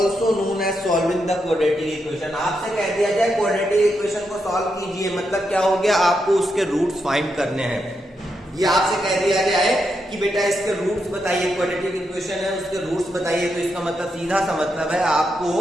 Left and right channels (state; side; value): normal; both; correlation 0.83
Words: known as solving the quadratic equation। आपसे कह दिया जाए quadratic equation को सॉल्व कीजिए, मतलब क्या हो गया, आपको उसके रूट्स फाइंड करने हैं। ये आपसे कह दिया गया है कि बेटा इसके रूट्स बताइए, क्वाड्रेटिक इक्वेशन है उसके रूट्स बताइए, तो इसका मतलब सीधा सा मतलब है